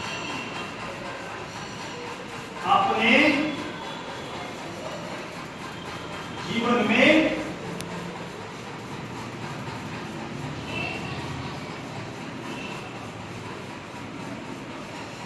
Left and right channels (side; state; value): both; identical; correlation 1.00